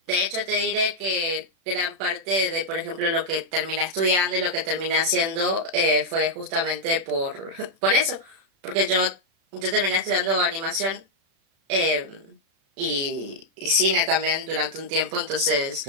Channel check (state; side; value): late; left; 36 ms